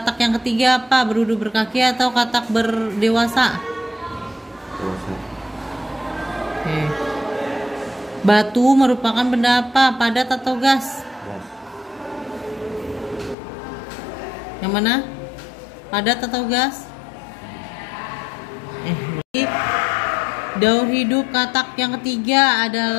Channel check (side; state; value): right; drops out; at 13.4 s